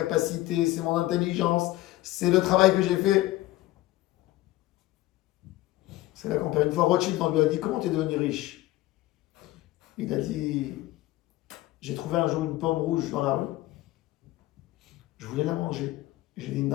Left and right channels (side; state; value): right; quieter; 16.8 dB